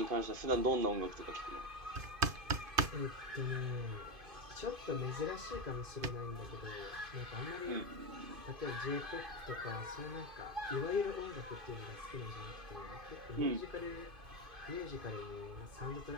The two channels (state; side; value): late; left; 2.5 ms